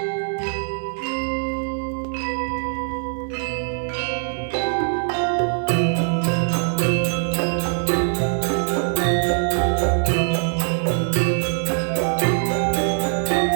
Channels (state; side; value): silent; left; 64 dB below the other